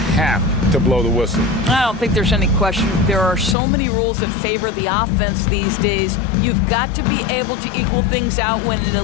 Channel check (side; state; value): right; drops out; at 3.6 s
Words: to blow the whistle. I don't think there's any question. There are so many rules that favor the offense these days. You've got to be able to equal things out when an